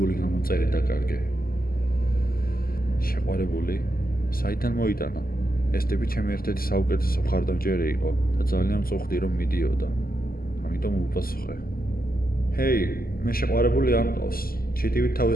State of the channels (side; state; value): right; late; 0.43 ms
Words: გამომწერი დაკარგე. შეყვარებული? საიდან მოიტანა? ეს ტიპი ჩემი ერთ-ერთი საუკეთესო მხარდამჭერი იყო და ძალიან მწუხდი, რომ მიდიოდა. ამიტომ უპასუხე. ჰეი, მე შეყვარებული არ მყავს. ჩიტივით